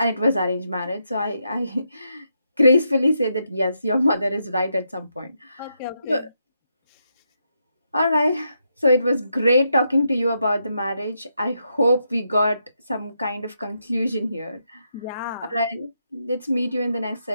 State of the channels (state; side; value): inverted; both; correlation -0.81